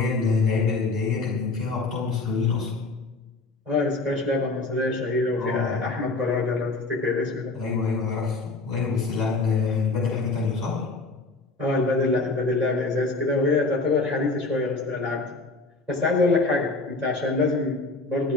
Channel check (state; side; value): quieter; right; 3.5 dB